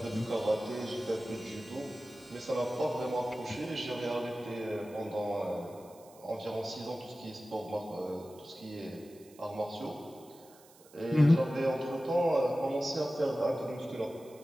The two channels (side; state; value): right; noise; hiss, 25 dB below the sound